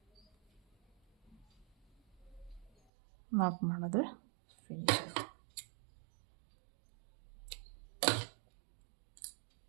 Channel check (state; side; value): drops out; left; at 2.7 s